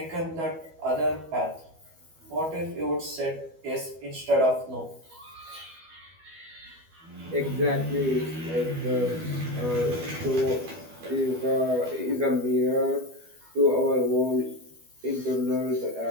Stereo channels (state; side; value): late; left; 12 ms